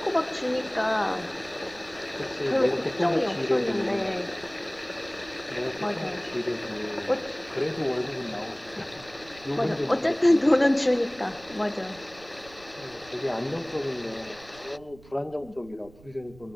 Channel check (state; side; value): noise; right; rumble, 23 dB below the sound